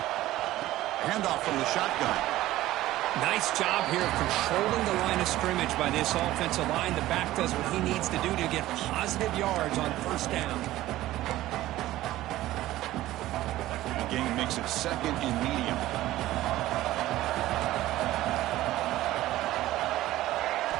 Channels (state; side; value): quieter; left; 15.6 dB